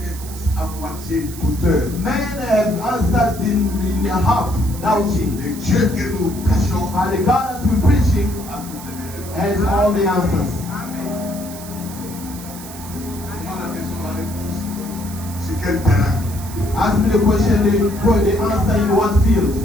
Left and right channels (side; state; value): right; noise; hiss, 14 dB below the sound